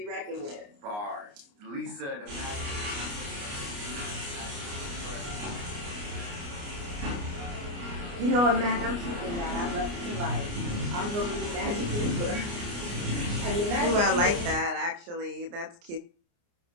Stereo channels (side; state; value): left; late; 29 ms